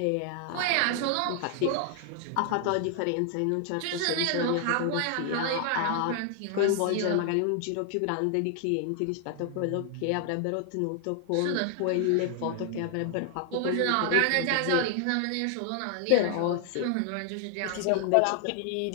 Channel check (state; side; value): different; both; correlation 0.00